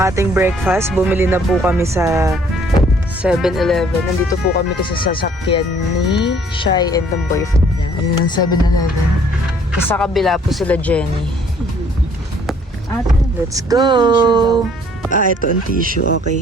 ating breakfast. Bumili na po kami sa 7-Eleven. Nandito po kami kasi sa sasakyan ni Shai and the boyfriend niya. Ayun ang 7-Eleven. Sa kabila po sila Jenny. Let's go! Ah, ito ang tissue.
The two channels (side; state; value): both; normal; correlation 0.60